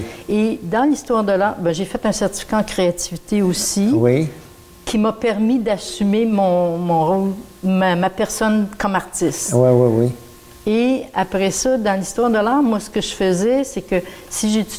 Et dans l'histoire de l'art, bien, j'ai fait un certificat en créativité aussi, Oui. qui m'a permis d'assumer mon rôle, ma personne comme artiste. Oui. Et après ça, dans l'histoire de l'art, moi, ce que je faisais, c'est que si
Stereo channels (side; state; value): both; identical; correlation 1.00